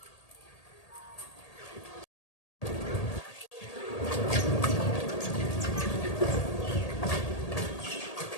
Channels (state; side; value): late; right; 1.8 ms